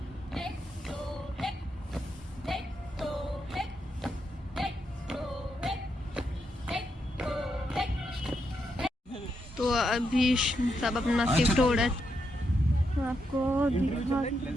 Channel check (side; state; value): both; normal; correlation 0.81